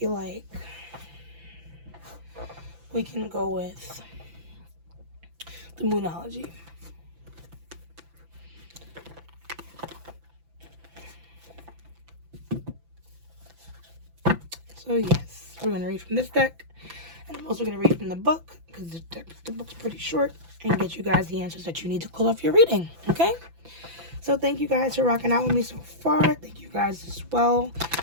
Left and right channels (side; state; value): left; late; 5.9 ms